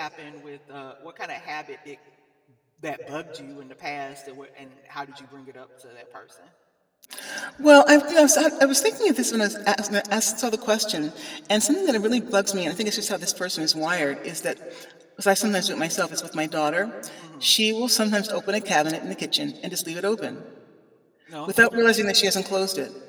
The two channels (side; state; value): both; identical; correlation 1.00